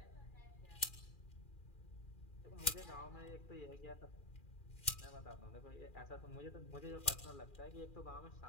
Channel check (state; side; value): late; right; 2.4 ms